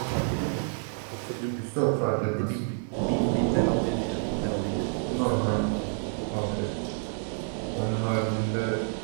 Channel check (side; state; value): left; silent; 59 dB below the other